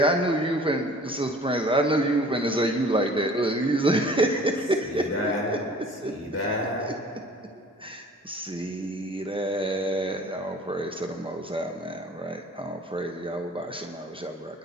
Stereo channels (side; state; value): both; normal; correlation 0.49